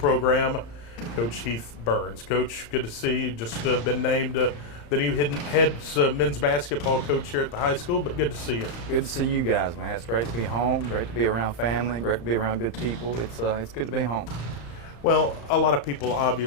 Coach Heath Burns. Coach, good to see you. Just been named the new head men's basketball coach here at the high school, but good to see you. Good to see you guys, man. It's great to be home, great to be around family, great to be around good people. It's good to be home. Well, a lot of people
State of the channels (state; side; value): late; right; 35 ms